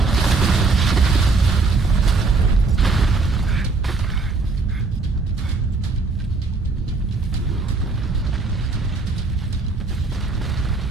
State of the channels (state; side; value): quieter; left; 3.9 dB